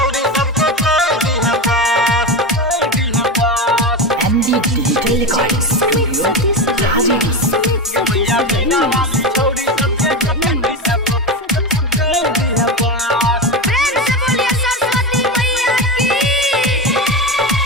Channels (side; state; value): both; normal; correlation 0.18